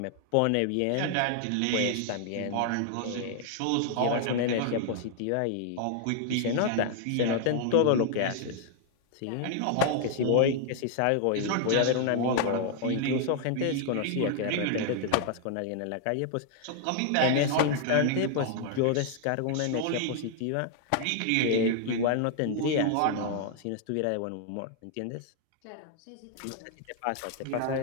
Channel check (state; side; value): different; both; correlation 0.00